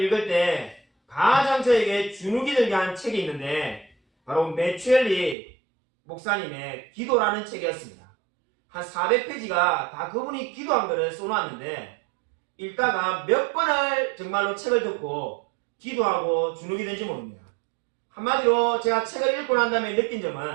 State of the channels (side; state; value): left; drops out; at 5.4 s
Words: 때 가장 저에게 주눅이 들게 한 책이 있는데 바로 메추엘리 목사님의 기도라는 책이었습니다. 한 400페이지가 다 그분이 기도한 거를 써놨는데 읽다가 몇 번을 정말로 책을 듣고 기도하고 주눅이 든지 모릅니다. 한마디로 제가 책을 읽고 난 다음에 느낀